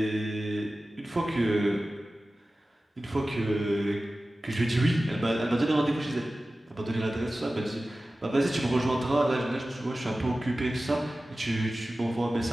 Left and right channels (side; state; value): both; normal; correlation 0.96